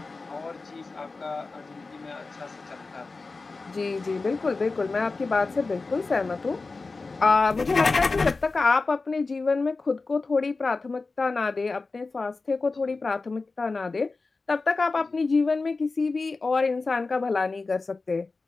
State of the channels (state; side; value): quieter; right; 3.8 dB